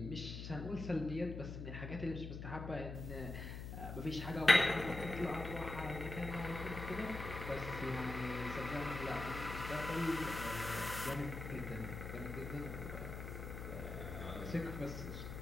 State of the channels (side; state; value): left; noise; hum, 7 dB below the sound